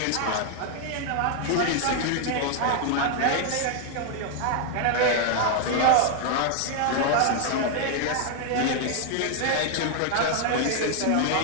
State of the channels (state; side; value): different; both; correlation 0.00